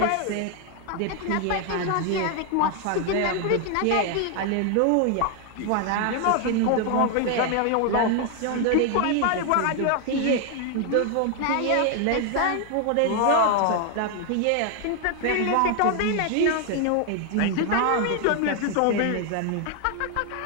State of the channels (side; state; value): both; different; correlation 0.00